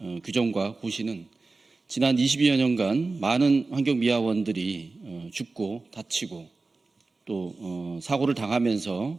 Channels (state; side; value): quieter; left; 3.7 dB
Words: 규정과 고시는 지난 22여 년간 많은 환경미화원들이 죽고 다치고 또 사고를 당하면서